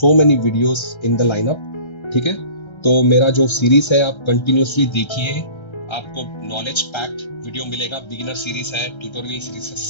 many videos in the lineup, ठीक है। तो मेरा जो सीरीज है आप कंटिन्यूसली देखिए, आपको नॉलेज पैक्ड वीडियो मिलेगा। बिगिनर सीरीज है, ट्यूटोरियल सीरीज है,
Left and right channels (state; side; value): late; right; 1.3 ms